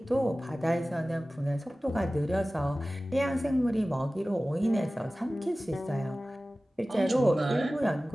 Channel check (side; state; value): both; normal; correlation 0.97